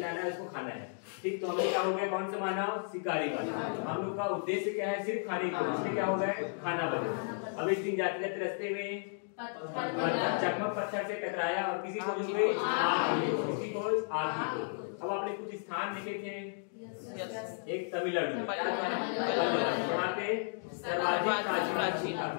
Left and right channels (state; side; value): silent; right; digital silence